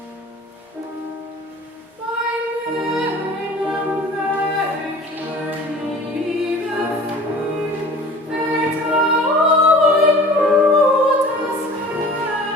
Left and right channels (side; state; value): both; normal; correlation 0.44